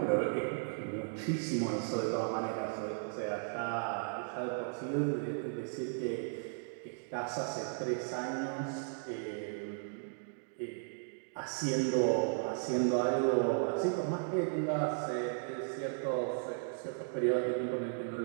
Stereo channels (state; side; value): silent; left; digital silence